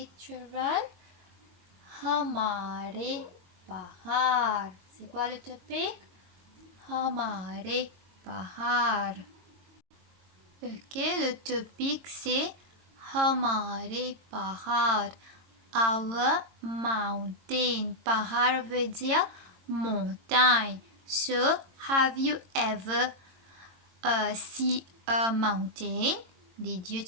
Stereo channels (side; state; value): left; late; 22 ms